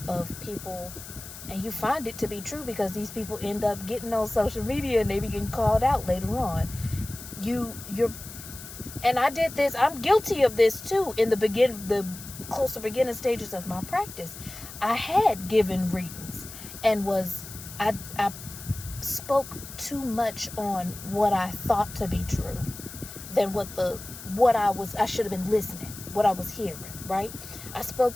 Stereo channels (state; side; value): noise; left; hiss, 13 dB below the sound